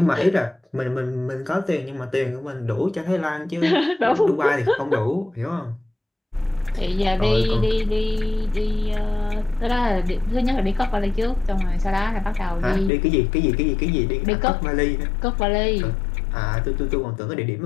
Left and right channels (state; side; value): drops out; right; at 12.9 s